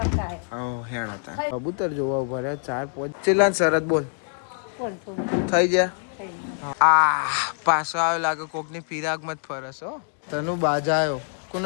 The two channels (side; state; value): right; silent; 57 dB below the other